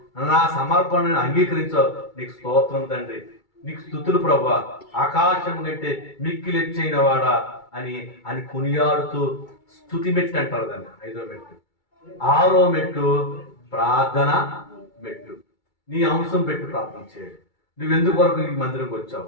నా సమర్పణను అంగీకరించావు, నీకు స్తోత్రం తండ్రి, నీకు స్తుతులు ప్రభువా, ఆకాశం కంటే మిక్కిలెచ్చైన వాడా అని కొనియాడుతూ స్తుతి మెట్టు అంటారు దాన్ని. 5వ మెట్టు. 6వ మెట్టు ప్రార్థన మెట్టు. నీ అంశం పెట్టి ప్రార్థన చేయాలి. నువ్వు ఎందుకొరకు ఈ మందిరంకి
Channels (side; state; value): right; late; 2.3 ms